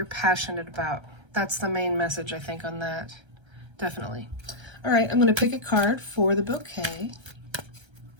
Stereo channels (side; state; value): left; late; 1.3 ms